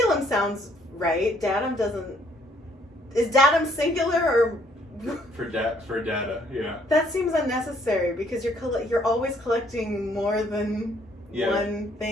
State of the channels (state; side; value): normal; both; correlation 0.65